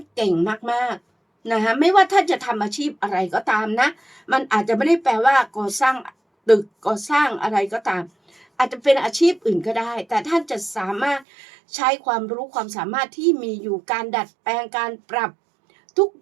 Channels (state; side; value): drops out; left; at 11.2 s